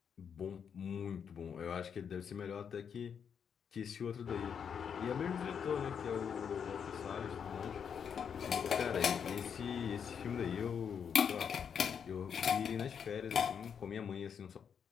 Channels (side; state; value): right; quieter; 7.3 dB